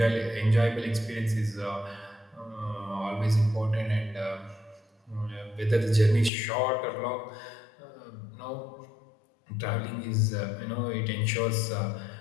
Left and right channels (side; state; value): right; drops out; at 6.3 s